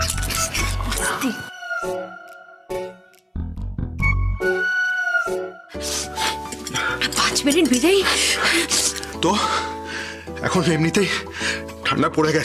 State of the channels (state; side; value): identical; both; correlation 1.00